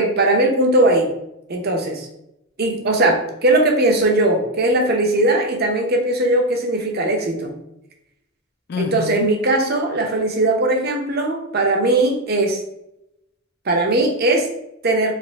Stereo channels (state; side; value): normal; both; correlation 0.05